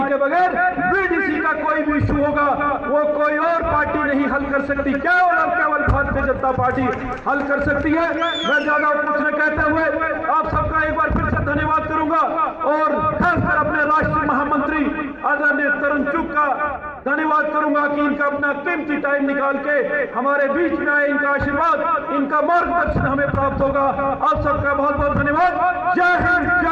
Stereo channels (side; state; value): both; identical; correlation 1.00